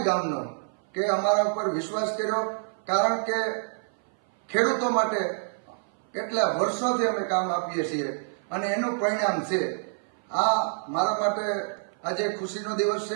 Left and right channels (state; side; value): silent; left; 57 dB below the other